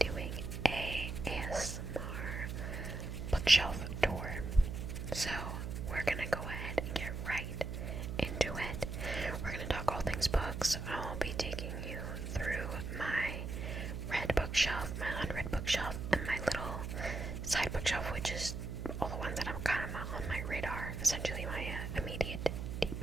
a ASMR bookshelf tour. So we're going to go ahead and get right into it. We're going to talk all things books. I'll be taking you through my read bookshelf, my unread bookshelf, and my little side bookshelf, which is all the ones that I'm kind of on my radar, essentially my immediate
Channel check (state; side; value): noise; right; hum, 5 dB below the sound